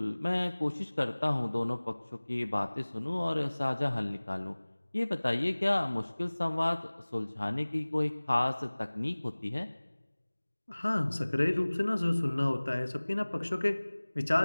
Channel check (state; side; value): inverted; both; correlation -1.00